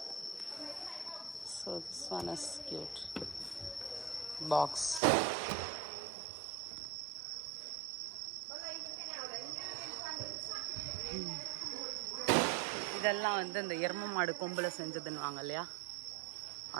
So this one is cute box. இதெல்லாம் வந்து இந்த எரும மாடு கொம்பில் செஞ்சதுன்னு வாங்க இல்லையா,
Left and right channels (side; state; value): left; drops out; at 5.0 s